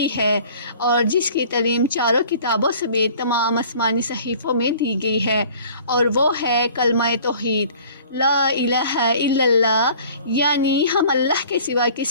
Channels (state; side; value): inverted; both; correlation -0.49